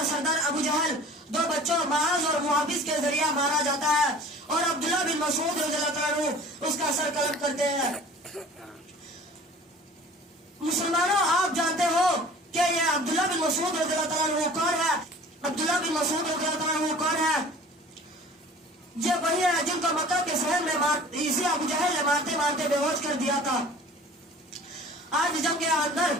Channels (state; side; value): normal; both; correlation 0.45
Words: سردار ابو جہل دو بچوں معاذ اور محافظ کے ذریعہ مارا جاتا ہے اور عبداللہ بن مسعود رضی اللہ تعالیٰ عنہ اس کا سر قلم کرتے ہیں. مسلمانوں آپ جانتے ہو کہ یہ عبداللہ بن مسعود رضی اللہ تعالیٰ عنہ کون ہے؟ عبداللہ بن مسعود رضی اللہ تعالیٰ عنہ کون ہے؟ یہ وہی ہے جن کو مکہ کے شہر میں اسی ابو جہل نے مارتے مارتے بے ہوش کر دیا تھا. آج جنگ کے اندر